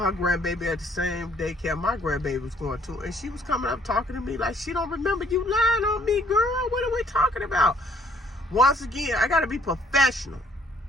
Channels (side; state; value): both; normal; correlation 0.62